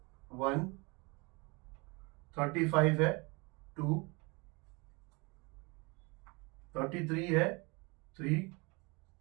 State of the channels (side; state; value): left; quieter; 27.9 dB